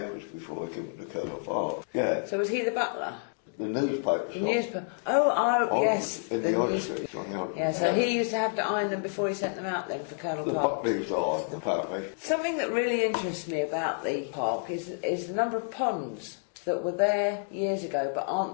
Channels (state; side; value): silent; right; digital silence